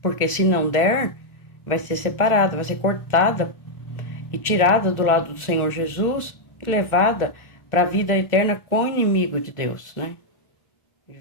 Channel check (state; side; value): late; right; 1.4 ms